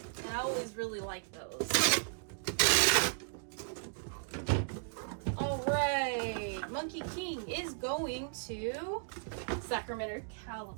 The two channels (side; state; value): left; silent; digital silence